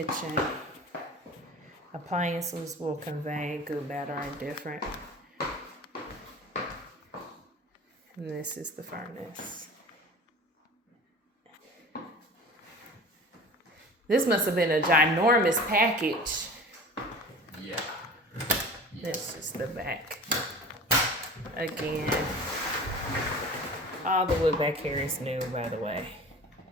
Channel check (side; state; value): both; normal; correlation 0.38